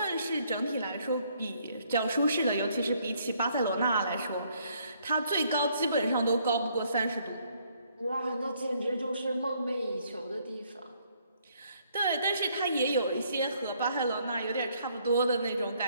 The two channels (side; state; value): both; inverted; correlation -0.67